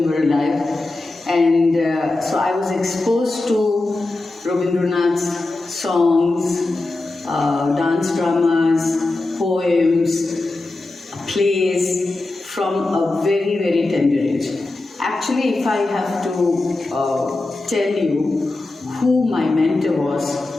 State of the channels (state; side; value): quieter; right; 3.0 dB